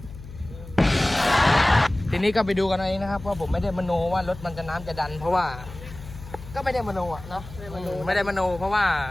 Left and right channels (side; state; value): left; noise; hum, 15 dB below the sound